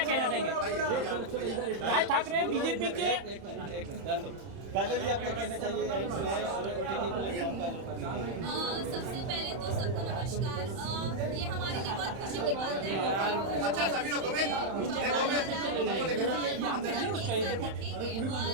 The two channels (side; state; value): left; late; 31 ms